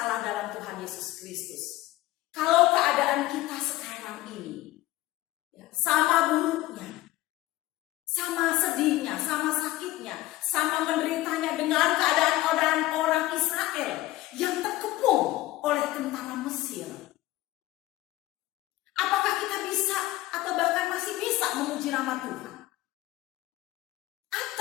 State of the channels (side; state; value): right; quieter; 17.0 dB